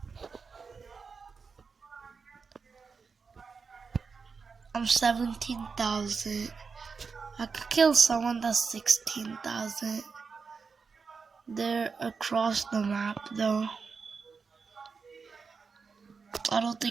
I'm 17,000. I could kill someone that's 16,000. They're across the map though. I don't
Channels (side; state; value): left; quieter; 5.2 dB